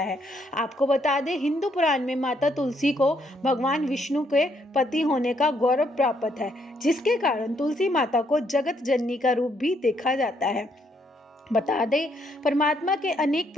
आपको बता दें, हिंदू पुराण में माता तुलसी को भगवान विष्णु के पति होने का गौरव प्राप्त है, जिसके कारण तुलसी माता को जगत जननी का रूप भी देखा जाता है। बता दें, परमात्मा के अनेक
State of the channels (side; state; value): both; normal; correlation 0.72